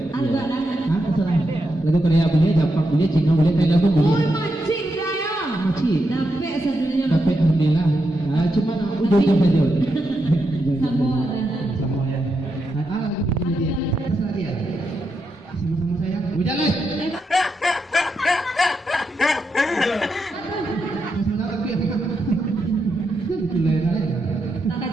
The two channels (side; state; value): both; normal; correlation 0.84